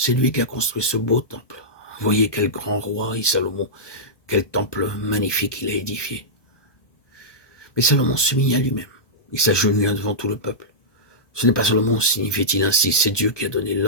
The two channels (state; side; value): late; right; 1.2 ms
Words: lui qui a construit ce beau temple. Voyez quel grand roi est Salomon, quel temple magnifique il a édifié. » Mais Salomon s'humilia lui-même. Il s'agenouilla devant tout le peuple. Ce n'est pas Salomon, signifiait-il ainsi, c'est Dieu qui a donné